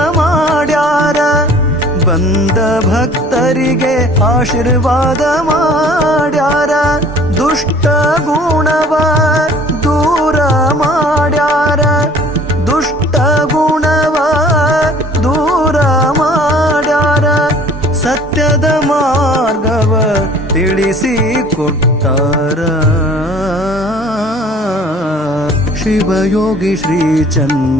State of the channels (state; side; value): normal; both; correlation 0.51